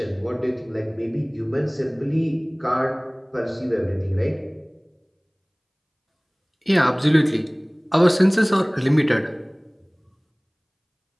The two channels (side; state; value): both; identical; correlation 1.00